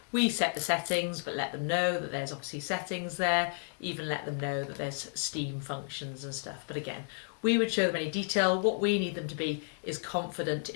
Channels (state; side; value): silent; right; digital silence